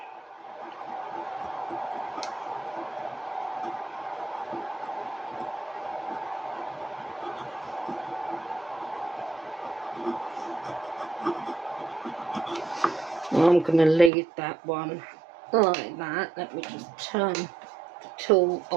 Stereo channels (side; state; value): left; drops out; at 14.1 s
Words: I'm going to leave that one like that. Let me just turn the tool